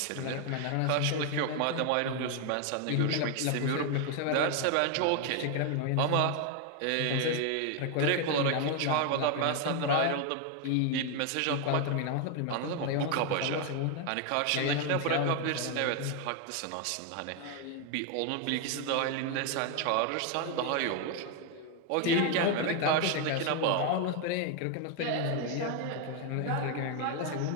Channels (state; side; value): different; both; correlation 0.01